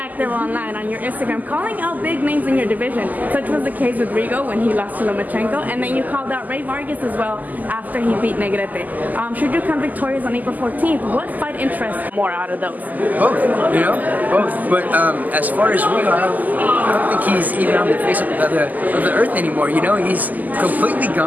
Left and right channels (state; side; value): late; left; 0.081 ms